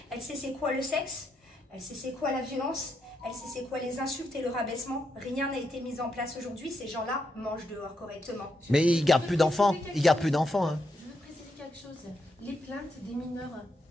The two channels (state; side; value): normal; both; correlation 0.81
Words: Elle sait c'est quoi le sexe, elle sait c'est quoi la violence. Elle sait c'est quoi les insultes et le rabaissement. Rien n'a été mis en place aujourd'hui. Ces gens-là mangent dehors correctement. Mais ils gardent plus d'enfants. Ils gardent plus d'enfants. Hein. Je veux préciser quelque chose. Les plaintes des mineurs